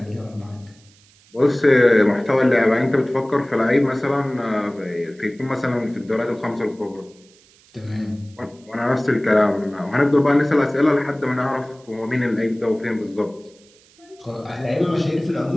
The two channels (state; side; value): noise; right; hiss, 29 dB below the sound